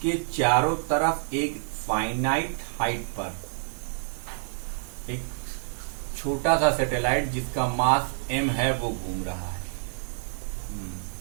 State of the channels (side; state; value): left; silent; 57 dB below the other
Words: चारों तरफ एक फाइनाइट हाइट पर एक छोटा सा सैटेलाइट जिसका मास m है वो घूम रहा है।